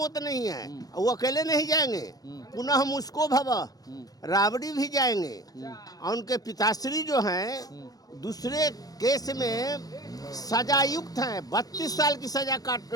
नहीं है। वो अकेले नहीं जाएंगे, पुनः मुस्को भवा राबड़ी भी जाएंगे। और उनके पिताश्री जो हैं दूसरे केस में सजायुक्त हैं। 32 साल की सजा काट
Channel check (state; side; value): late; right; 0.18 ms